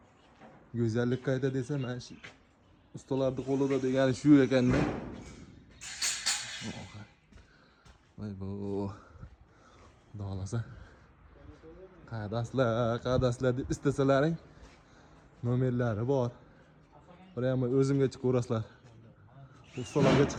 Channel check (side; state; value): both; identical; correlation 1.00